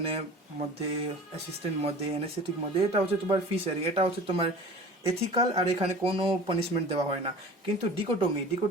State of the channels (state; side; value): normal; both; correlation 0.41